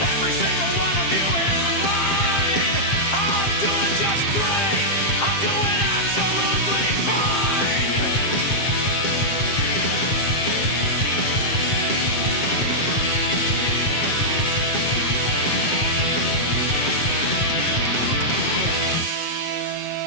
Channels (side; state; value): right; late; 7.5 ms